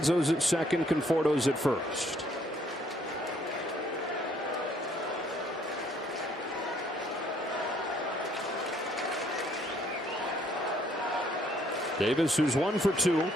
at second, Conforto's at first. Davis, who's 1 for 2,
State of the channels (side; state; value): both; normal; correlation 0.65